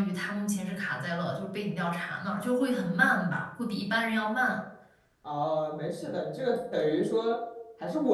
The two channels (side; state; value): both; identical; correlation 1.00